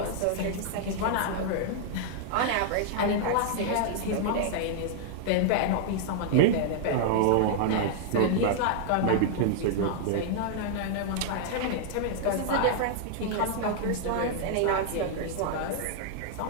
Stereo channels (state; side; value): different; both; correlation -0.01